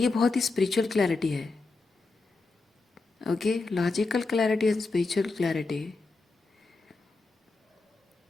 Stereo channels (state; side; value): quieter; right; 3.7 dB